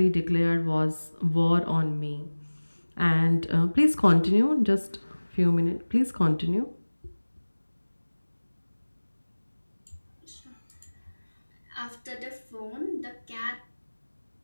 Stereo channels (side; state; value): both; inverted; correlation -1.00